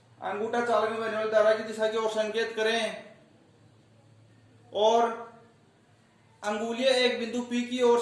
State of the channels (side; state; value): both; identical; correlation 1.00